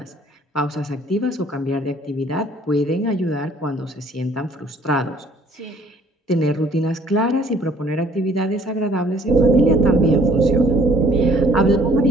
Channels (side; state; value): both; normal; correlation 0.58